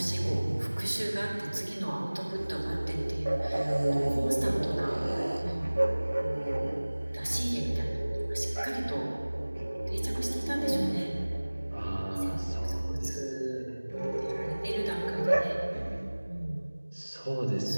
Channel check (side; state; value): both; inverted; correlation -1.00